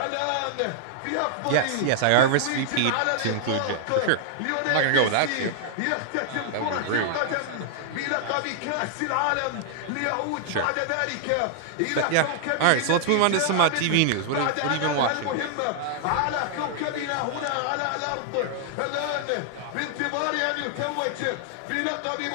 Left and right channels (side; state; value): both; different; correlation -0.01